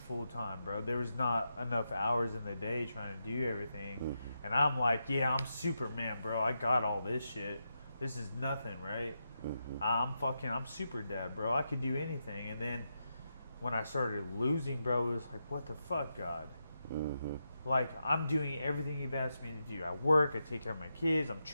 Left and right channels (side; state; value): both; inverted; correlation -0.86